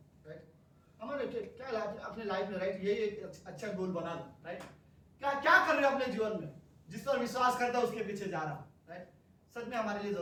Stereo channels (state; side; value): identical; both; correlation 1.00